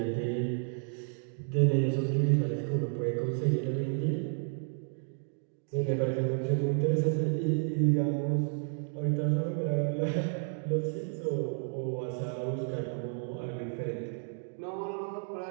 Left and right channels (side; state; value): left; silent; 57 dB below the other